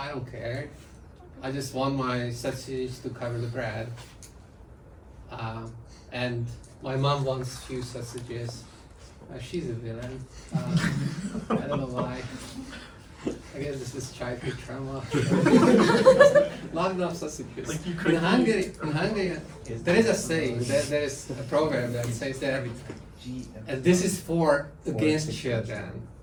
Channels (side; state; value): both; identical; correlation 1.00